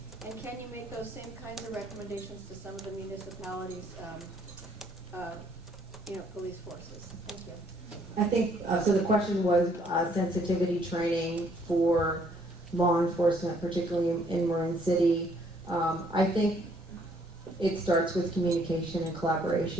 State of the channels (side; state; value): both; normal; correlation 0.65